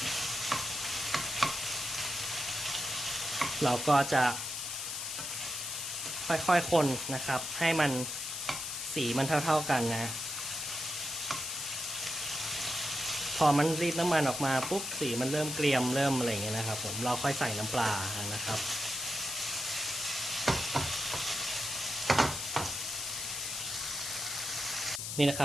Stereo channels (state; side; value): noise; left; hiss, 4 dB below the sound